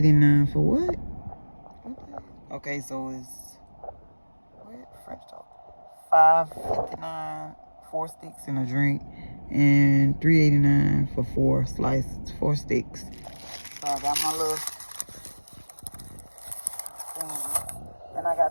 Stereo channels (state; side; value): inverted; both; correlation -1.00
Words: for what? Okay, so it's French toast. $5.59, 4 sticks and a drink, and $3.89 for 4 slices, 4 sticks. So I got my little thing, and I